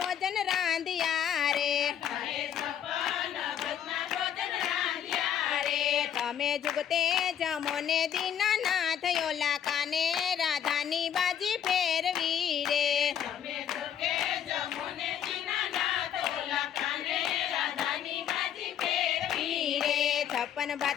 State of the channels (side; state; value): right; quieter; 9.3 dB